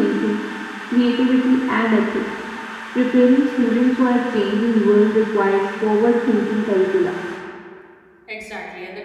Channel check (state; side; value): identical; both; correlation 1.00